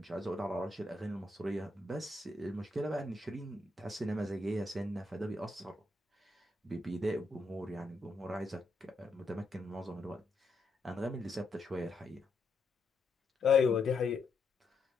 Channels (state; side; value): quieter; right; 3.1 dB